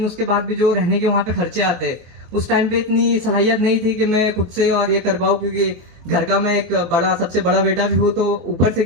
उसके बाद भी जो रहने के वहाँ पे खर्चे आते, उस टाइम पे इतनी सलाहियत नहीं थी कि मैं खुद से और ये कर पाऊँ, क्योंकि घर का मैं एक सबसे बड़ा बेटा भी हूँ, तो ऊपर से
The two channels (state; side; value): late; left; 23 ms